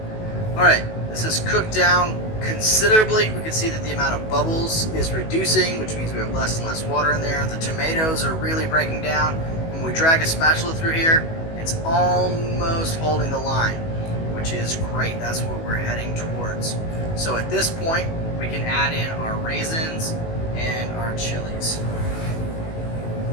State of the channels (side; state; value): right; late; 19 ms